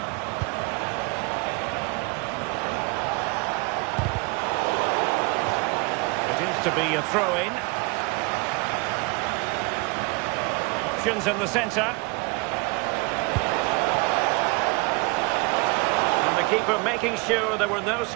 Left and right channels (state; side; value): quieter; left; 28.2 dB